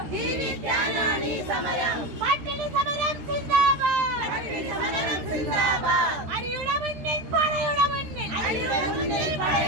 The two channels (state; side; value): late; left; 13 ms